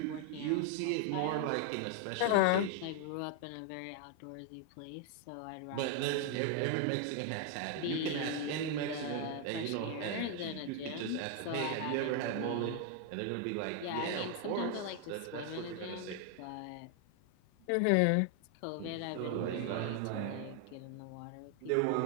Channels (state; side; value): different; both; correlation 0.00